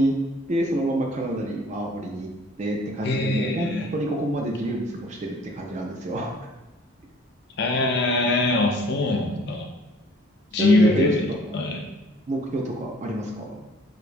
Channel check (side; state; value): both; normal; correlation 0.54